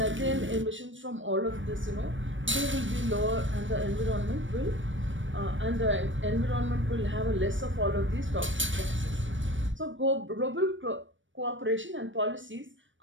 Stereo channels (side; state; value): left; late; 0.56 ms